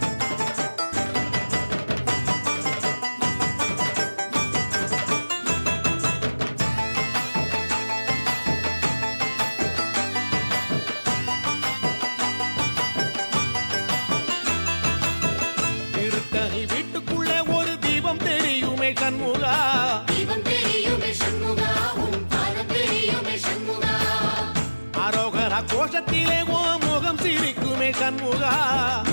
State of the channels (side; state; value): both; inverted; correlation -1.00